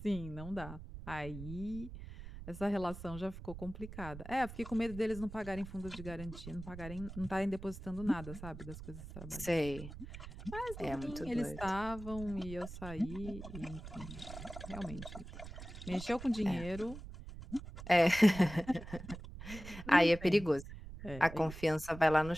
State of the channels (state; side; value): noise; right; rumble, 12 dB below the sound